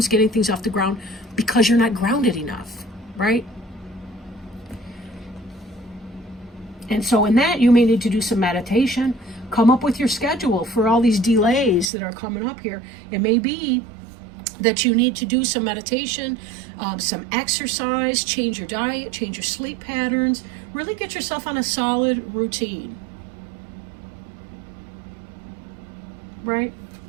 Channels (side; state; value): left; drops out; at 11.9 s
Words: getting things off the ground because you're not grounded enough, right? And so in that, you may need to do some meditation, come up with your schedule for all these delays that are coming up here. It may be that you need to do some meditation, some exercise, change your diet, change your sleep patterns, really get yourself on a solid routine, right?